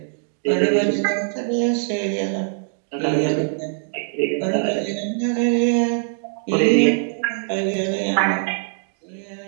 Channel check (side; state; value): left; silent; 64 dB below the other